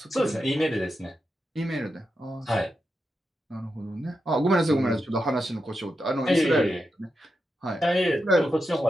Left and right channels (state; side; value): normal; both; correlation 0.88